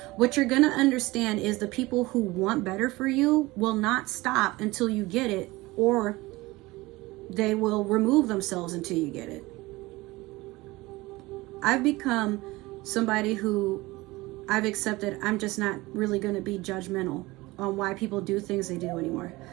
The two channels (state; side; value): quieter; left; 20.8 dB